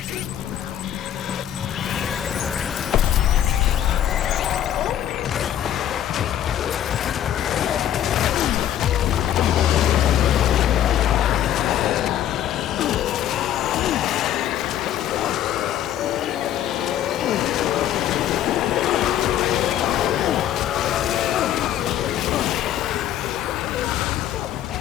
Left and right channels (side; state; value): right; quieter; 11.1 dB